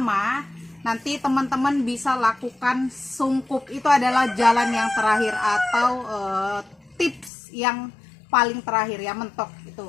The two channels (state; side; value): drops out; right; at 7.3 s